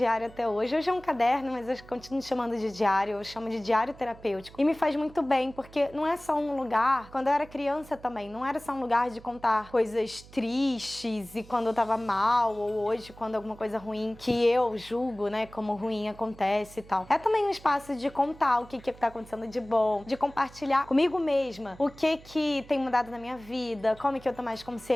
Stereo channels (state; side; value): noise; right; hum, 21 dB below the sound